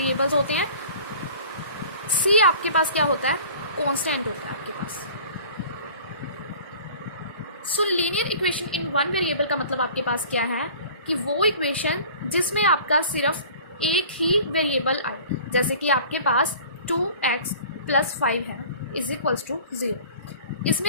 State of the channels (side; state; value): both; inverted; correlation -0.44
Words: होते हैं. सी आपके पास क्या होता है? कांस्टेंट होता है आपके पास. So linear equation in one variable का मतलब आपके पास क्या है कि वो इक्वेशन जिसमें आपका सिर्फ एक ही वेरिएबल आए. जैसे कि आपके पास 2x + 5 है इज इक्वल्स टू 0. इसमें